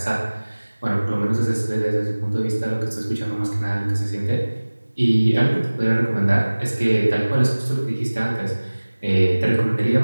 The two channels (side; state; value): both; inverted; correlation -1.00